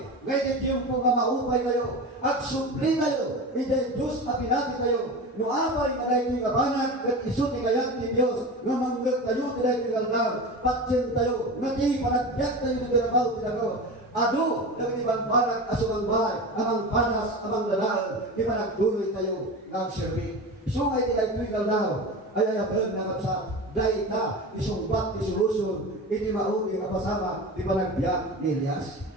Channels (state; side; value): normal; both; correlation 0.28